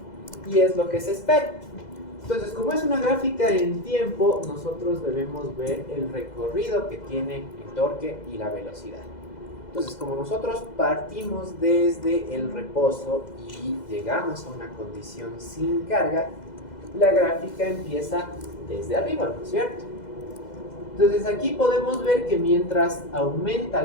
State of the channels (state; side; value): late; right; 2.0 ms